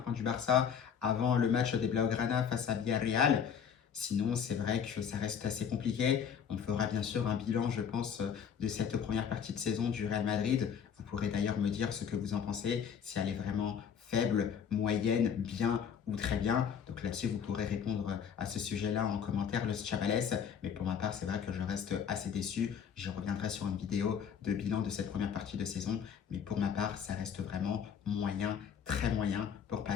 du Barça avant le match des Blaugrana face à Villarreal. Sinon, c'est vrai que ça reste assez compliqué. On fera bien sûr un bilan, je pense, de cette première partie de saison du Real Madrid. Vous pourrez d'ailleurs me dire ce que vous en pensez, si elle est vraiment faible, moyenne, bien ou très bien. Donc là-dessus, vous pourrez répondre à ce sujet-là en commentaire, Los Chavales. Mais pour ma part, c'est vrai que je reste assez déçu. J'y reviendrai sur une vidéo de bilan de cette première partie de saison. Mais pour ma part, ça reste vraiment moyen, très moyen, pour pas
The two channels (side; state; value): right; quieter; 7.5 dB